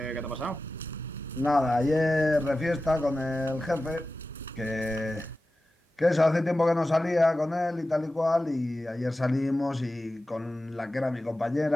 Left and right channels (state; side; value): normal; both; correlation 0.94